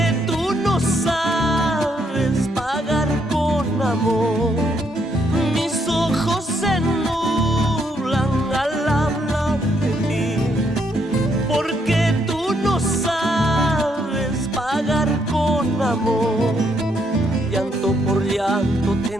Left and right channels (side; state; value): both; normal; correlation 0.74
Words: tú no sabes pagar con amor. Mis ojos se nublan al hablar de ti, porque tú no sabes pagar con amor. Llanto por llanto